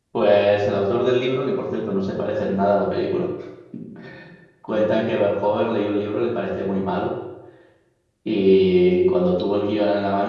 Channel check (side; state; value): both; identical; correlation 1.00